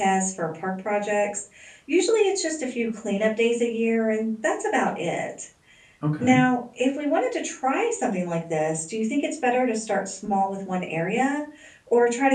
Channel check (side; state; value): both; identical; correlation 1.00